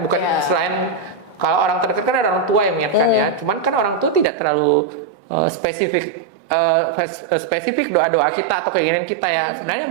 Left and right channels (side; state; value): left; drops out; at 4.2 s